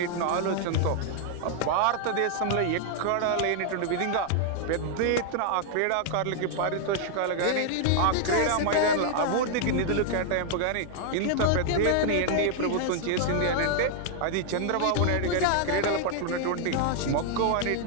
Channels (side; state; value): both; different; correlation 0.00